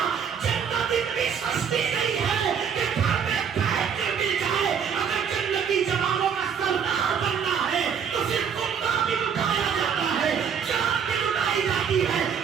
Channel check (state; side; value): quieter; left; 7.2 dB